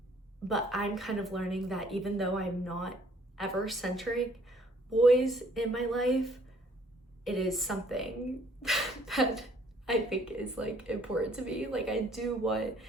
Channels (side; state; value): both; normal; correlation 0.61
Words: But I'm kind of learning that even though I'm not ever centering boys in my life, it is something that I think is like important to me. Like I do want